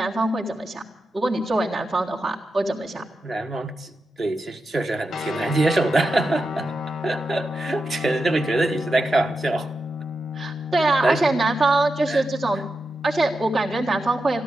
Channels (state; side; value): normal; both; correlation 0.89